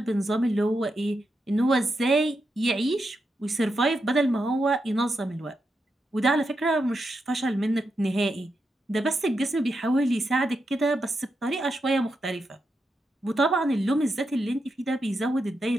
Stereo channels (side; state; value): both; normal; correlation 0.85